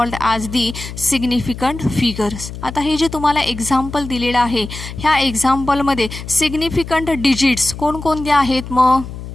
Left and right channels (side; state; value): left; noise; hum, 11 dB below the sound